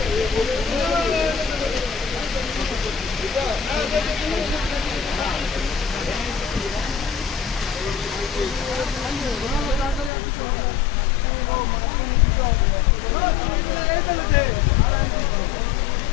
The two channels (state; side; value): drops out; right; at 10.1 s